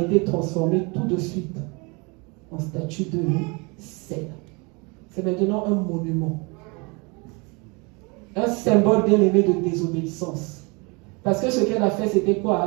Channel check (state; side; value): quieter; left; 29.4 dB